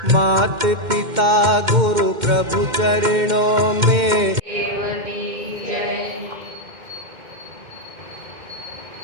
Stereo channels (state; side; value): late; left; 2.1 ms